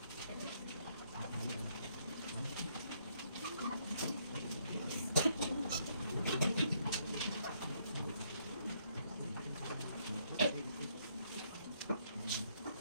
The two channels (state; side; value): inverted; both; correlation -0.71